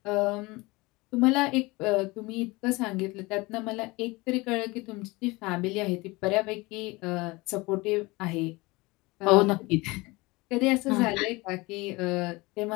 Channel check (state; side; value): quieter; right; 23.3 dB